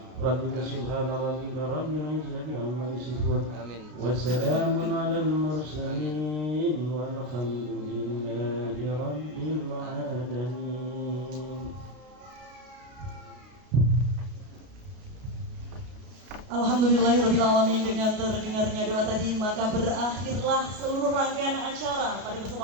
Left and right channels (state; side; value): late; left; 33 ms